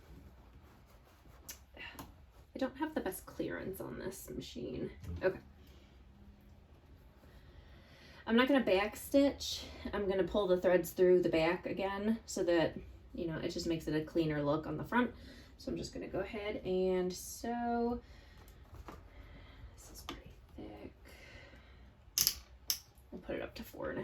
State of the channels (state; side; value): identical; both; correlation 1.00